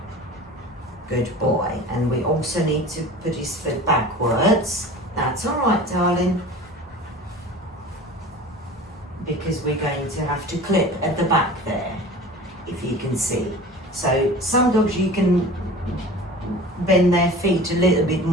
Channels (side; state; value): both; normal; correlation 0.39